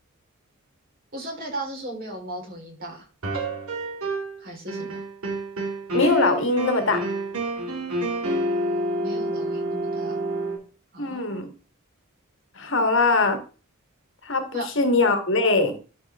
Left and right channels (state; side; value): normal; both; correlation 0.00